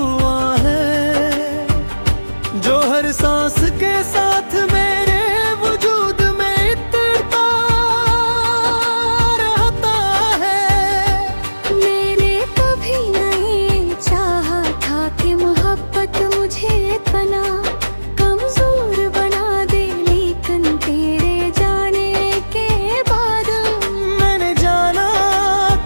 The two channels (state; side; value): inverted; both; correlation -1.00